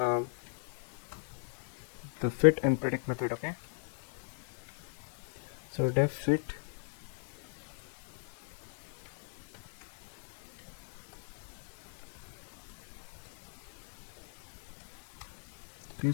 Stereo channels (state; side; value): silent; right; 52 dB below the other